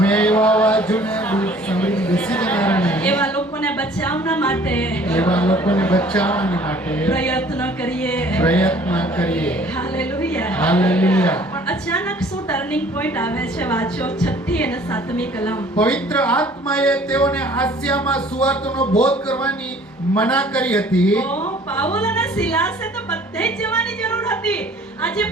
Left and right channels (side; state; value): both; normal; correlation 0.53